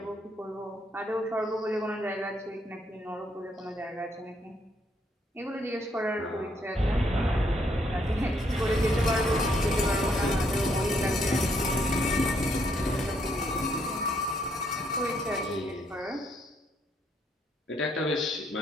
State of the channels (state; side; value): normal; both; correlation 0.72